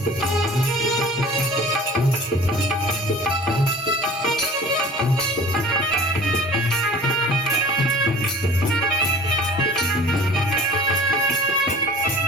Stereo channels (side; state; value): both; normal; correlation 0.44